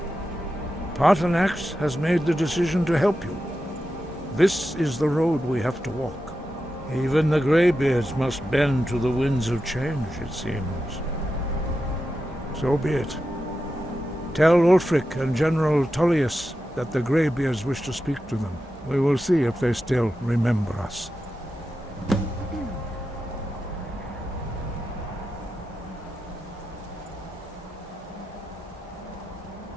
Paarthurnax has made the decision to help you. This is the road we have to walk. Even the Greybeards must bend to the winds of change, it seems. So be it. Tell Ulfric and General Tullius that the Greybeards wish to speak to them. We will see if they still remember us.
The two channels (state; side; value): normal; both; correlation 0.90